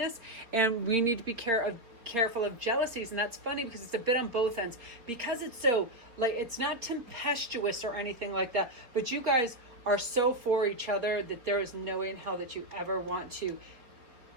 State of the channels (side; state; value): left; late; 3.8 ms